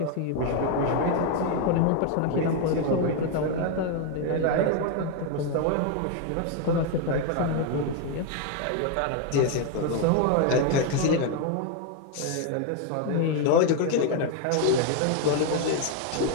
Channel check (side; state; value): both; different; correlation 0.01